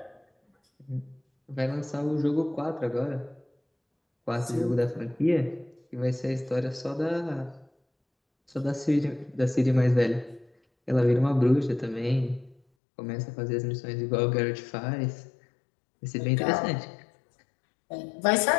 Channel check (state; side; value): drops out; right; at 12.6 s